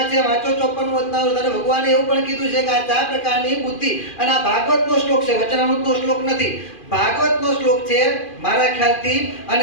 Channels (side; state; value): right; late; 2.5 ms